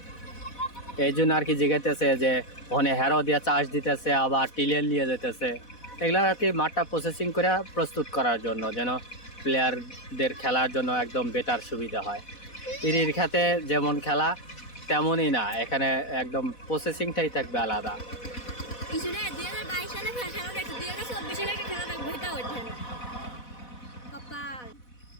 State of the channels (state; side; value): late; right; 4.1 ms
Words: এই জন্য আর কি জিগাইতেছে যে ওখানে হেরো দিয়ে চাষ দিতেছে, আবার টিলার নিয়ে যেতেছে। এগুলো আর কি মাঠটা প্রসেসিং করে প্রস্তুত করার জন্য, যেন প্লেয়ারদের খেলার জন্য একদম বেটার সুবিধা হয়। ইরির খেতে যেমন খেলা তেমনই না, এখানে একদম প্রসেসিংটাই থাকবে আলাদা। ইসুরে 2022 সালে খেলা দেখছি, 2024 সালে খেলা দেখবো, এটা হচ্ছে না কপাল।